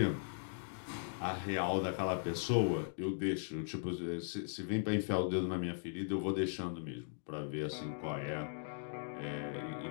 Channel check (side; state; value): right; silent; digital silence